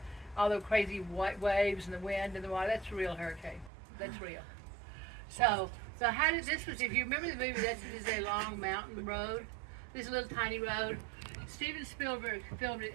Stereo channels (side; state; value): left; drops out; at 3.7 s